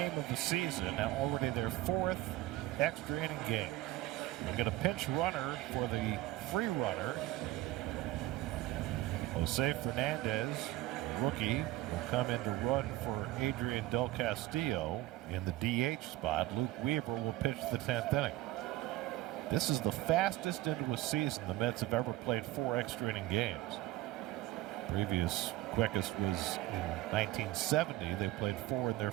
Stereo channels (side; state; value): left; quieter; 16.6 dB